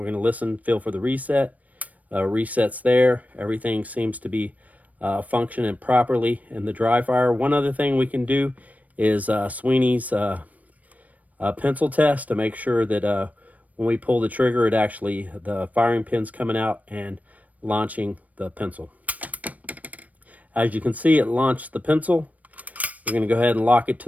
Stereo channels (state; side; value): late; left; 0.071 ms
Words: to listen, feel for the reset. Resets there. Everything seems to be functioning properly in the dry fire. One other thing we can do is Sweeney's pencil test to make sure that when we pull the trigger, it actually, the firing pin's coming out and launching the pencil. As you can see, it launched the pencil. We're going to go ahead and lock it